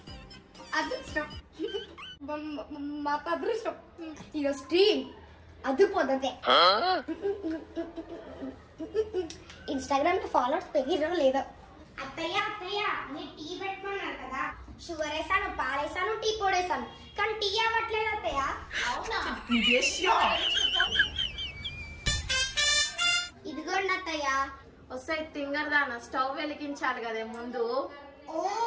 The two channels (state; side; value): identical; both; correlation 1.00